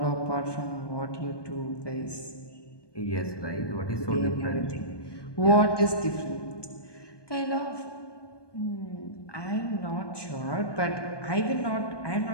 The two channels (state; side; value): late; right; 1.2 ms